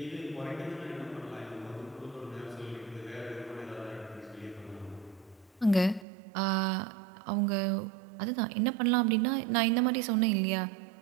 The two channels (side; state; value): left; drops out; at 6.1 s